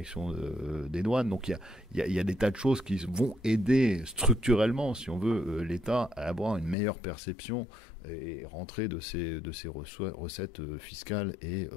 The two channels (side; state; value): right; drops out; at 6.8 s